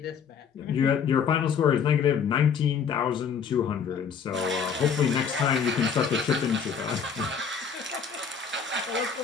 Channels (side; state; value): right; quieter; 6.7 dB